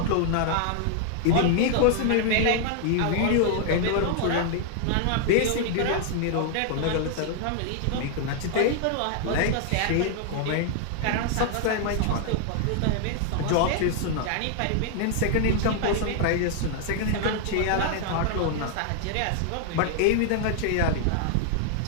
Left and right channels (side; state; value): both; different; correlation 0.00